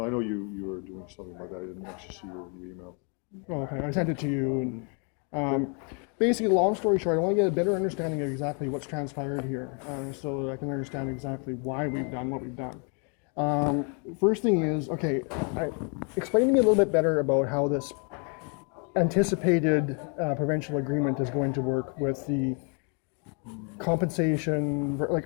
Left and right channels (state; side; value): quieter; right; 37.7 dB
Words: I know you were doing something like that. I didn't actually see your email. Oh, okay, I sent it to you. And basically, long story short, I want to get a better understanding of exactly what's transpired here, so that I can understand exactly why we've done what we've done. First thing is, okay, explain to me a little bit better about how this anticipated provincial agreement is going to work with the compensation.